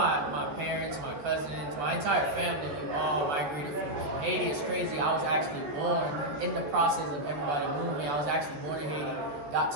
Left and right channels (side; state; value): left; late; 13 ms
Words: parents, my cousins, my entire family, we all migrated from Haiti. It's crazy. I was actually born in the process of everybody moving. I was actually born in Haiti, got